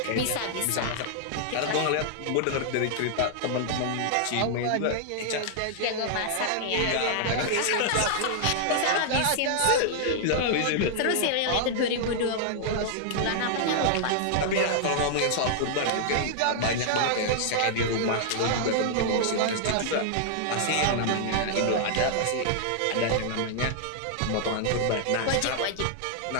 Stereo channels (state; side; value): different; both; correlation -0.01